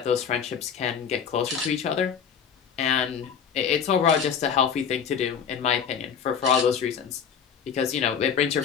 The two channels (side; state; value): right; quieter; 7.3 dB